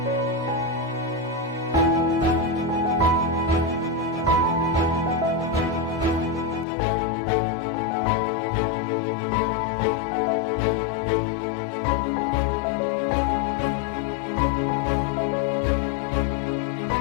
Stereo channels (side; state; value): right; drops out; at 6.7 s